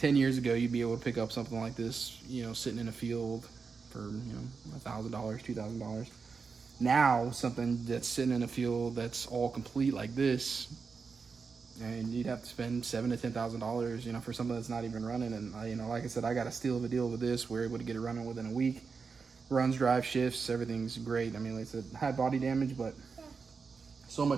years ago, you'd be able to pick up something like this, sitting in a field for, $1,000, $2,000. Now, something that's sitting in a field that's all complete like this, and you'd have to spend $7,000 to $10,000, for something that's not even running. And like I said, I got a steal of a deal with this. We're able to get it running within a week. Runs, drive, shifts, everything's great. I mean, like I said, had body damage, but so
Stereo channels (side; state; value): left; quieter; 5.1 dB